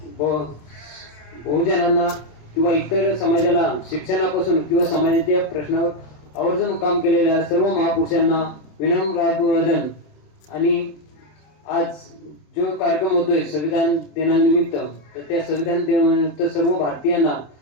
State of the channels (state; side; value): late; right; 27 ms